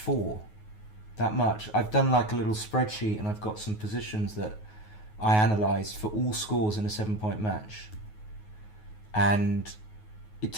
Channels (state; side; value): late; right; 9.4 ms